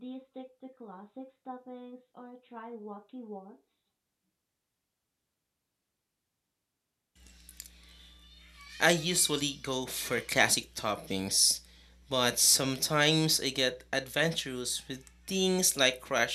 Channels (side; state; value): both; identical; correlation 1.00